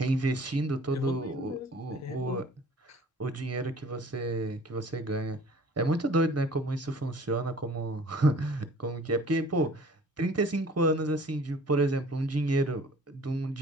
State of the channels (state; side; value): normal; both; correlation 0.50